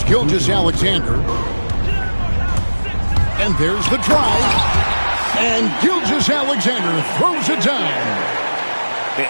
Gilgeous-Alexander. And there's the drive. And Gilgeous-Alexander throws it down.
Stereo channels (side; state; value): both; inverted; correlation -1.00